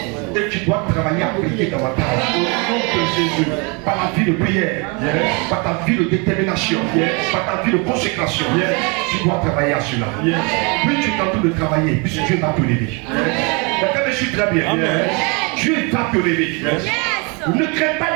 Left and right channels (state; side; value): quieter; left; 31.3 dB